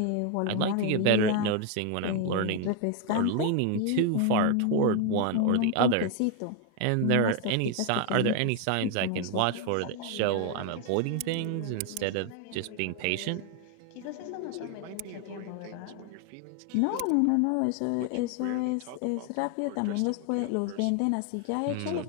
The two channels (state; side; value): different; both; correlation 0.01